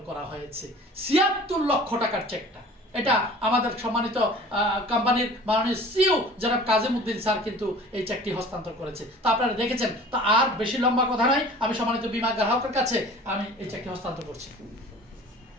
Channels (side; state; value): both; normal; correlation 0.44